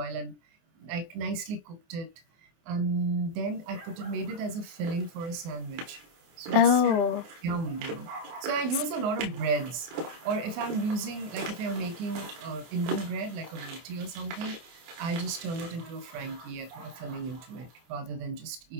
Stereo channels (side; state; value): left; late; 24 ms